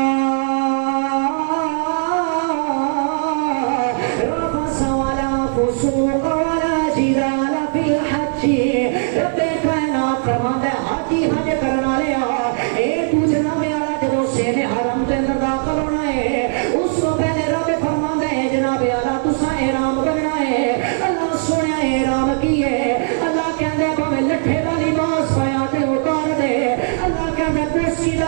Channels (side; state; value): left; silent; digital silence